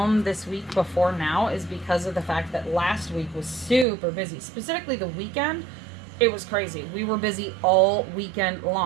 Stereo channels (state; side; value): drops out; left; at 3.9 s